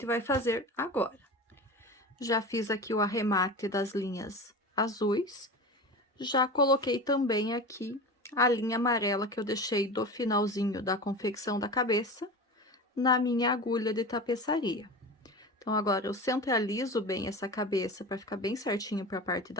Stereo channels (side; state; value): both; normal; correlation 0.30